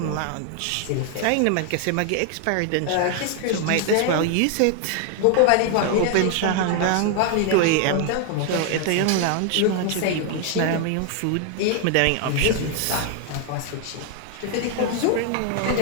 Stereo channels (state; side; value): different; both; correlation 0.00